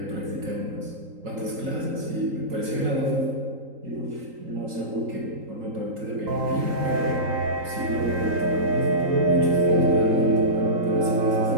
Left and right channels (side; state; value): left; late; 3.8 ms